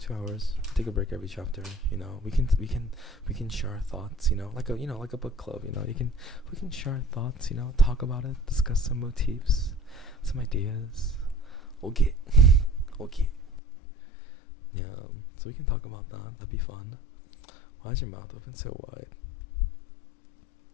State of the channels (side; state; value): right; drops out; at 13.6 s